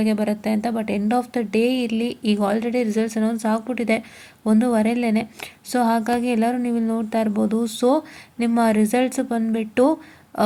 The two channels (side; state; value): both; identical; correlation 1.00